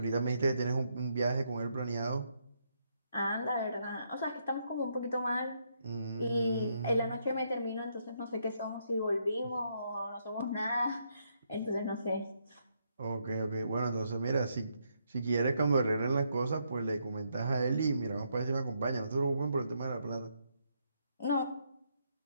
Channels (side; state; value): both; inverted; correlation -0.76